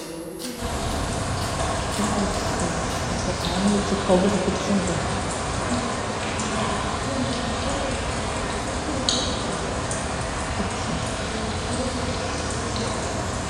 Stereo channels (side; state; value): both; identical; correlation 1.00